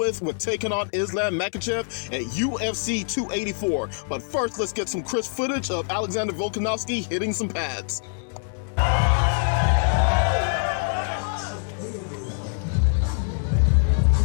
taking on Islam Makhachev at UFC 284. But first, let's get some crisp footage of Alexander Volkanovski hitting some pads.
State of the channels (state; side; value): silent; right; digital silence